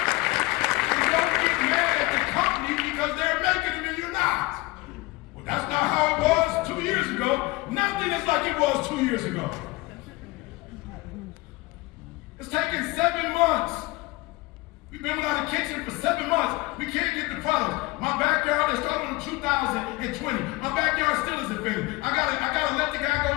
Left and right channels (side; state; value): right; quieter; 21.7 dB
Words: Because they're making them and you're not. Well, that's not how it was 2 years ago. Nothing is like it was 2 years ago. It's taken 7 months. We've been without a kitchen for 7 months. We can't get the products. My backyard, they started in 2020. My backyard still isn't finished. I gotta let the guy go,